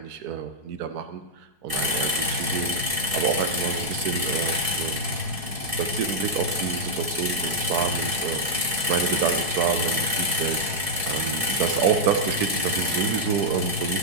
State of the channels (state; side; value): late; left; 4.6 ms